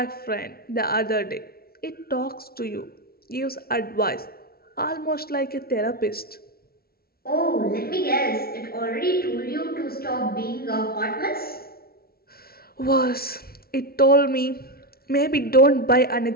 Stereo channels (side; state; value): right; late; 0.44 ms